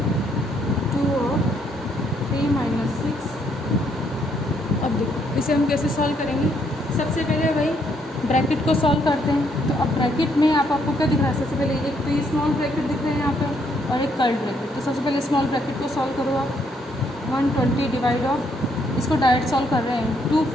2 और 3 - 6। अब देखो इसे हम कैसे सॉल्व करेंगे। सबसे पहले वही ब्रैकेट को सॉल्व करते हैं। तो अब ब्रैकेट में आपको क्या दिख रहा है, सबसे पहले एक तो स्मॉल ब्रैकेट दिख रहा है यहाँ पे और एक कर्ल्ड ब्रैकेट। तो सबसे पहले स्मॉल ब्रैकेट को सॉल्व करो आप। 120 डिवाइड ऑफ, इसको डायरेक्ट सॉल्व कर रहे हैं, 2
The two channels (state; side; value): normal; both; correlation 0.71